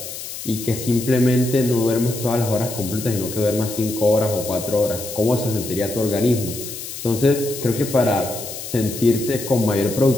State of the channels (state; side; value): noise; left; hiss, 9 dB below the sound